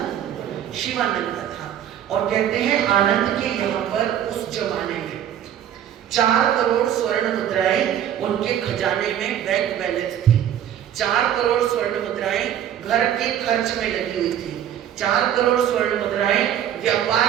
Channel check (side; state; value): left; quieter; 10.3 dB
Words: शिवानंदा था। और कहते हैं आनंद के यहाँ पर उस जमाने में 4 करोड़ स्वर्ण मुद्राएं उनके खजाने में बैंक बैलेंस थी। 4 करोड़ स्वर्ण मुद्राएं घर के खर्च में लगी हुई थी, 4 करोड़ स्वर्ण मुद्राएं व्यापार